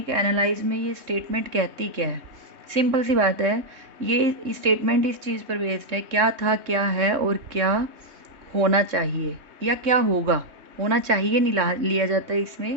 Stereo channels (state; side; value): late; left; 3.2 ms